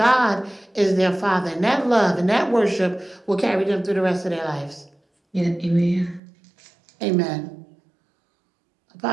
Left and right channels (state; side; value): drops out; left; at 6.2 s